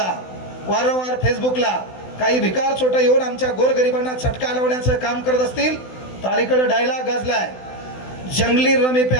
वारंवार फेसबुकला काही भिकार छोटं येऊन आमच्या गोरगरिबांना चटका लावण्याचं काम करत असतील तर अलीकडे डायलॉग गाजलाय, जंगली रमी पे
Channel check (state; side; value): late; right; 16 ms